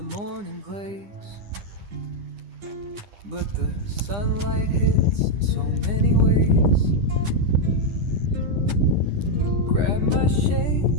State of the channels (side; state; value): left; late; 9.9 ms